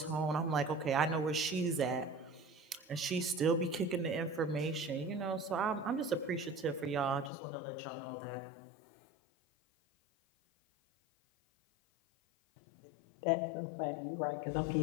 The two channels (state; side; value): drops out; right; at 7.3 s